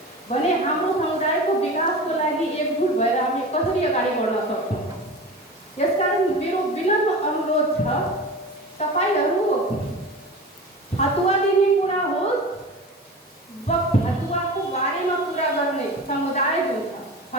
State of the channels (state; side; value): normal; both; correlation 0.32